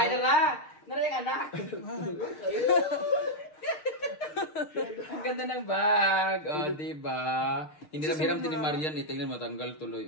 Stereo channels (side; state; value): right; late; 6.5 ms